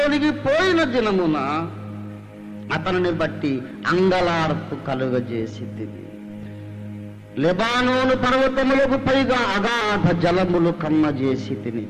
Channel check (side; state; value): both; identical; correlation 1.00